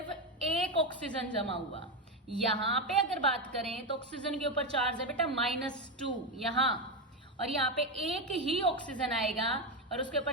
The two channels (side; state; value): both; normal; correlation 0.10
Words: एक ऑक्सीजन जमा हुआ। यहाँ पे अगर बात करें तो ऑक्सीजन के ऊपर चार्ज है बेटा -2 यहाँ, और यहाँ पे एक ही ऑक्सीजन आएगा और उसके